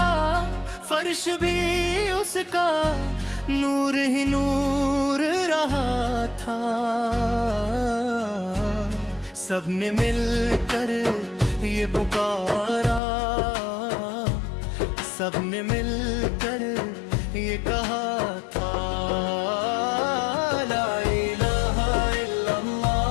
فرش بھی اس کا نور ہی نور رہا تھا سب نے مل کر یہ پکارا سب نے مل کر یہ کہا تھا لا الہ الا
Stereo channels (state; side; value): drops out; right; at 13.0 s